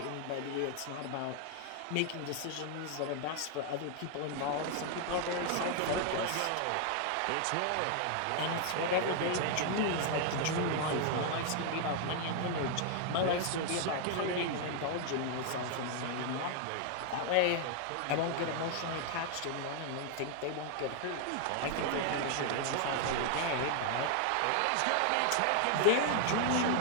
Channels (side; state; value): both; different; correlation 0.00